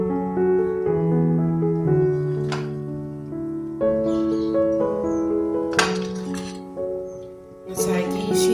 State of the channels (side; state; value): both; identical; correlation 1.00